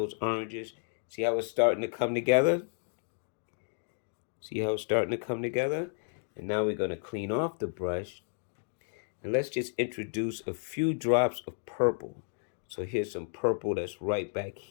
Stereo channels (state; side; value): silent; right; digital silence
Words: oranges. See how it's starting to come together? See how it's starting to come together? And now we're going to clean off the brush. And let's just introduce a few drops of purple. So here's some purple that's right back